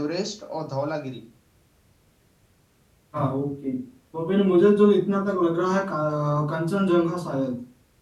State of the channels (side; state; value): both; identical; correlation 1.00